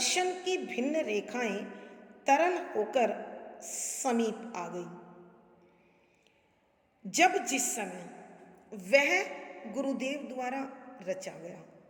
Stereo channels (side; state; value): both; identical; correlation 1.00